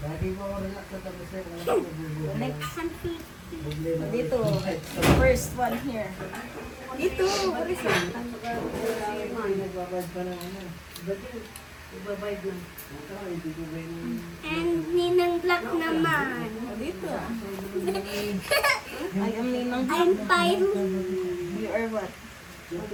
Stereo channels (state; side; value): identical; both; correlation 1.00